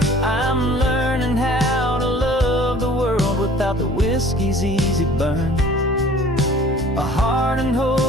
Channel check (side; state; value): both; normal; correlation 0.50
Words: I'm learning how to love the world without the whiskey's easy burn. A hard and